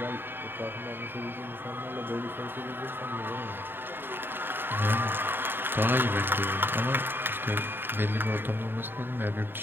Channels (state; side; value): late; left; 0.098 ms